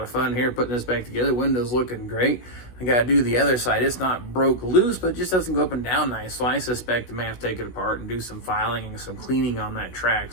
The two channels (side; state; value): right; late; 16 ms